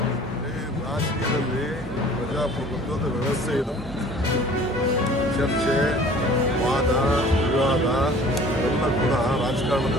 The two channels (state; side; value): normal; both; correlation 0.49